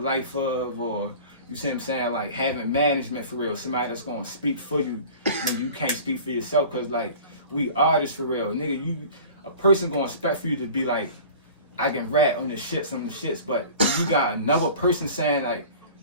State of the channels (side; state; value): both; inverted; correlation -0.41